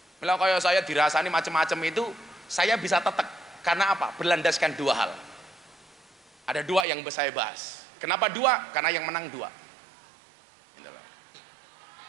Kalau kayak saya dirasani macam-macam itu, saya bisa tetek. Karena apa? Berlandaskan dua hal. Ada dua yang saya bahas. Kenapa dua? Karena yang menang dua.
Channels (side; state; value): left; drops out; at 6.9 s